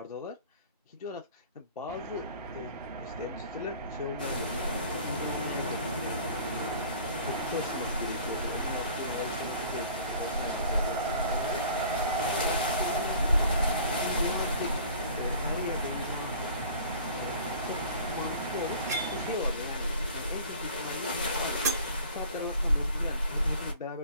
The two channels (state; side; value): inverted; both; correlation -0.47